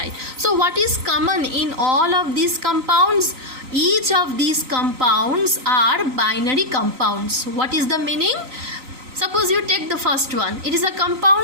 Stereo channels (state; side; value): late; left; 3.9 ms